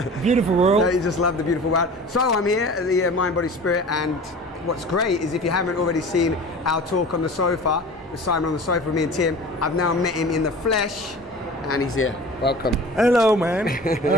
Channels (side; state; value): both; normal; correlation 0.39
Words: Beautiful world. You just love the beautiful world. So I'm here at the Mind, Body, Spirit, and what's great is if you haven't already seen our talk on the sofa, with Simon on the sofa with me and Tim, I've now met him in the flesh, and he's here. Welcome. Hello, man. How